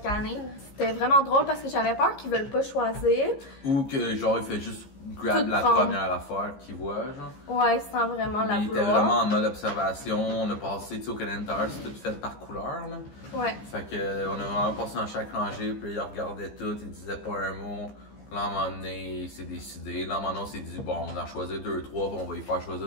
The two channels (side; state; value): right; late; 15 ms